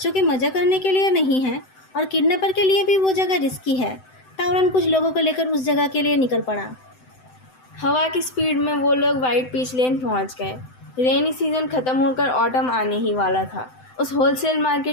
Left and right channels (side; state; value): right; late; 7.8 ms